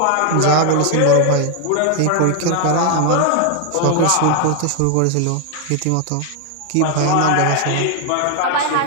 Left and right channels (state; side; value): different; both; correlation 0.00